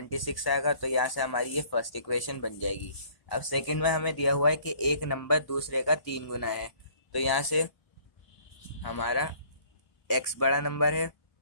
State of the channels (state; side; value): late; right; 1.0 ms